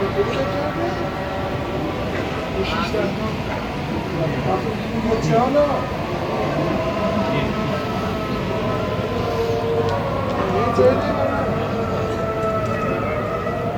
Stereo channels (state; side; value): identical; both; correlation 1.00